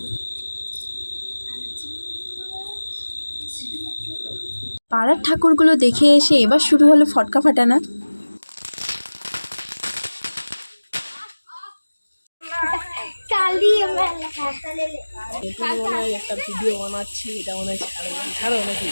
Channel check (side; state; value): both; inverted; correlation -1.00